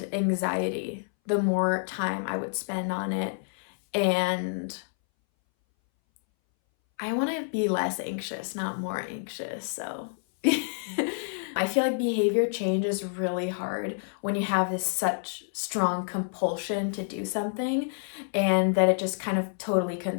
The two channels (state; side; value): silent; right; 59 dB below the other